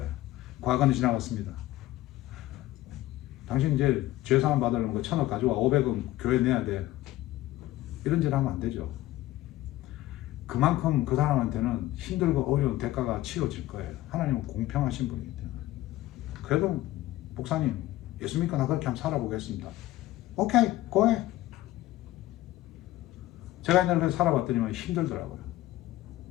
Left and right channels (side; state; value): right; quieter; 15.9 dB